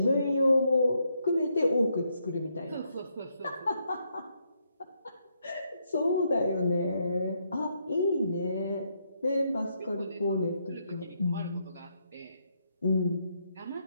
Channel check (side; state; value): both; inverted; correlation -0.77